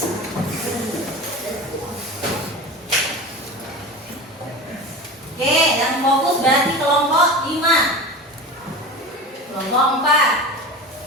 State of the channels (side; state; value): both; normal; correlation 0.31